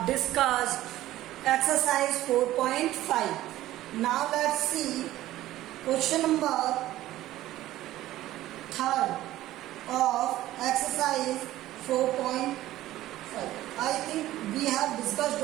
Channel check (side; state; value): left; quieter; 15.0 dB